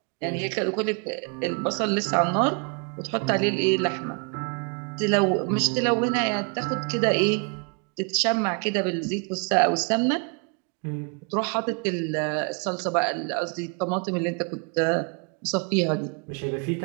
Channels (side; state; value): left; quieter; 35.7 dB